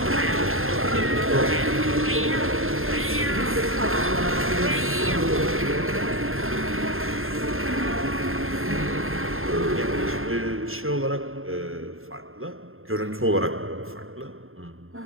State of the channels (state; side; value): late; left; 0.61 ms